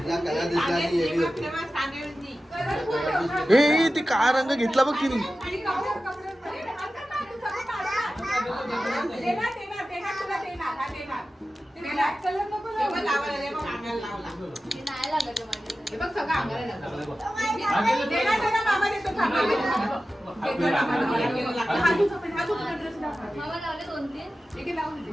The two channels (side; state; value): both; normal; correlation 0.94